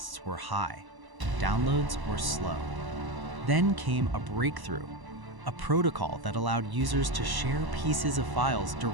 were high. Downloads were slow. Then came a breakthrough, a protocol that allowed users to share pieces of files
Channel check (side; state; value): left; late; 1.0 ms